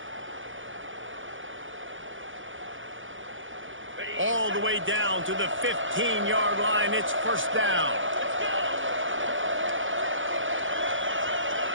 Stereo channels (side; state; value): left; late; 0.57 ms